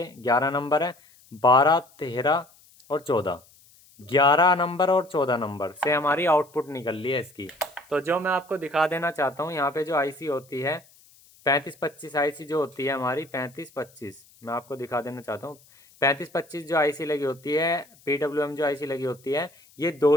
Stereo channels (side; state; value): left; noise; hiss, 28 dB below the sound